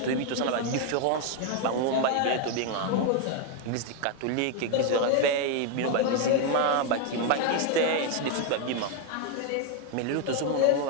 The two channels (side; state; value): both; different; correlation 0.01